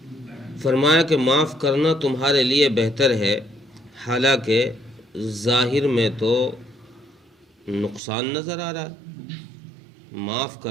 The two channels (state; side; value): drops out; left; at 8.0 s